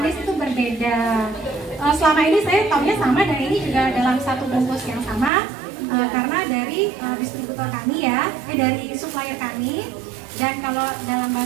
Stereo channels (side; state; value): left; drops out; at 5.3 s